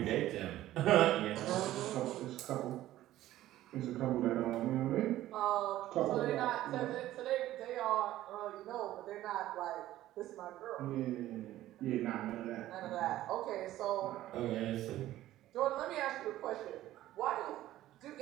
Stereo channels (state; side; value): quieter; left; 14.4 dB